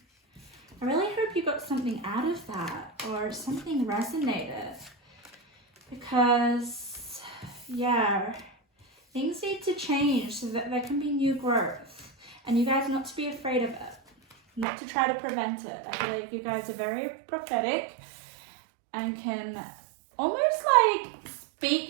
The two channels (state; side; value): drops out; left; at 14.7 s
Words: I really hope you got something out of that, or something resonated. Because, yeah, things need to change so that there can be new growth. And you guys not to be afraid of it. Not to try to prevent it. I feel like you guys are very prophetic and can almost like